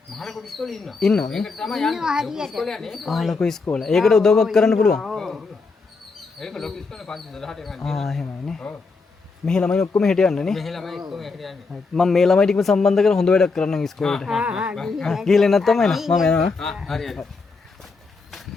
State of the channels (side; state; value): right; quieter; 4.2 dB